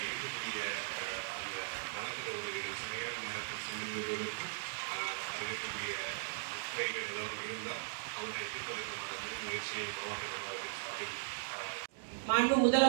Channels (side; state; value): left; silent; digital silence